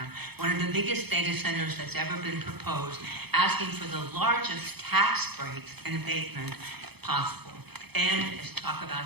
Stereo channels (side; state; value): left; late; 0.98 ms